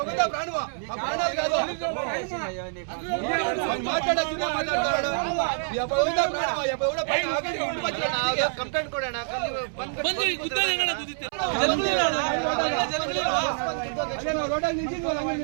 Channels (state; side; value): silent; left; 61 dB below the other